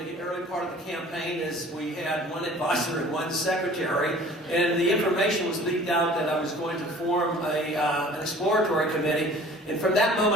early part of the campaign is we had one advisor and one secretary, and the information was leaked out that I was going to form an exploratory committee, and from that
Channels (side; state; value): both; normal; correlation 0.48